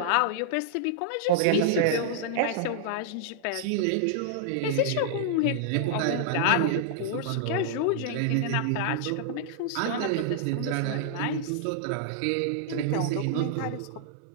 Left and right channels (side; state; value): both; different; correlation -0.01